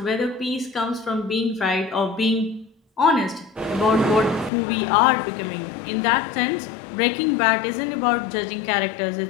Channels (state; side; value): drops out; right; at 4.5 s